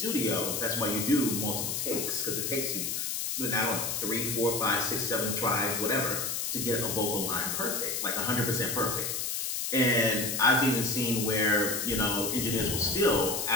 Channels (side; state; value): left; noise; hiss, 1 dB below the sound